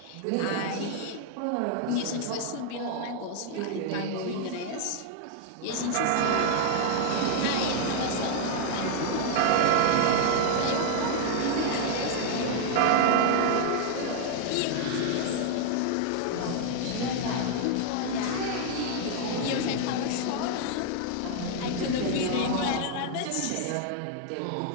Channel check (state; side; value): different; both; correlation 0.00